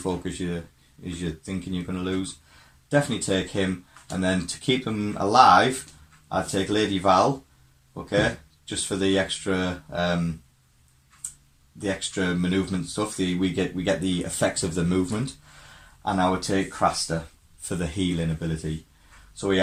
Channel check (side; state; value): both; identical; correlation 1.00